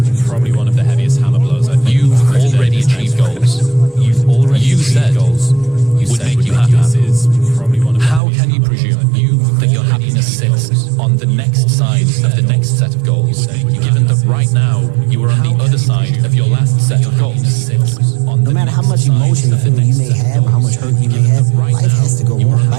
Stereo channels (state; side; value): drops out; left; at 8.2 s